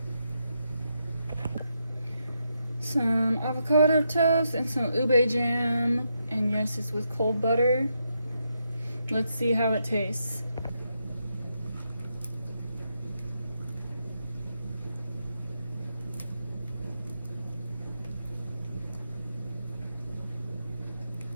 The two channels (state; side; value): inverted; both; correlation -0.82